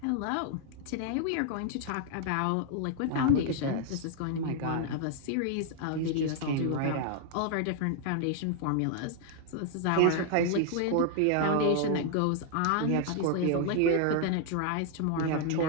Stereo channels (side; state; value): both; different; correlation 0.00